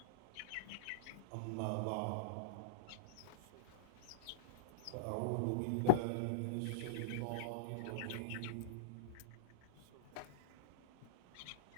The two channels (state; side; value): different; both; correlation -0.03